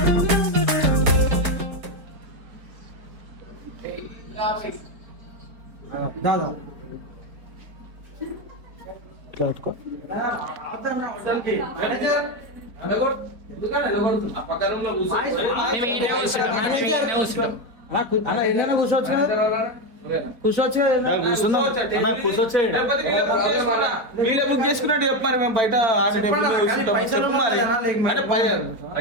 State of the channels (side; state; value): left; late; 4.4 ms